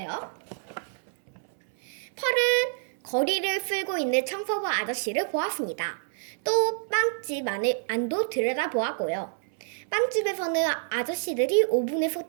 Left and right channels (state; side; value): silent; left; 60 dB below the other